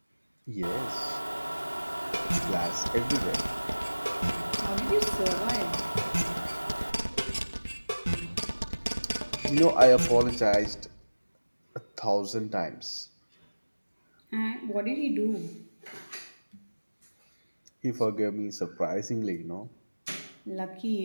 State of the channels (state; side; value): inverted; both; correlation -1.00